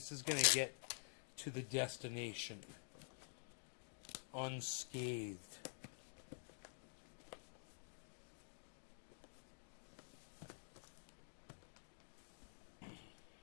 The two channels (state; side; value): silent; right; digital silence